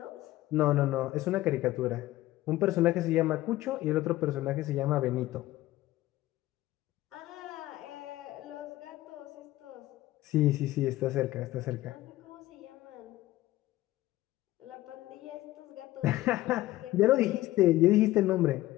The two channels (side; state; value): right; quieter; 16.5 dB